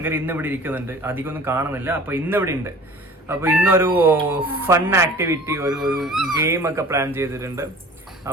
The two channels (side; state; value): both; normal; correlation 0.44